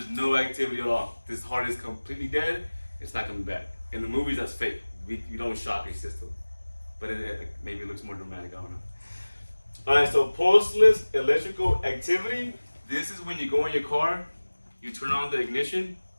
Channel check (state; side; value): inverted; both; correlation -1.00